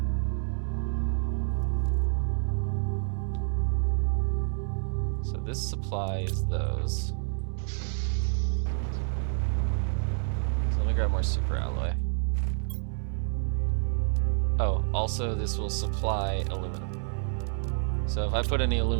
So this supplies those. So let me grab more super alloy. Oh, also this will supply aluminum. So if I put any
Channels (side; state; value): left; silent; digital silence